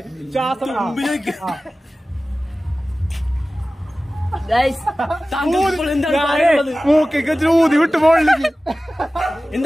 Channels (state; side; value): normal; both; correlation 0.96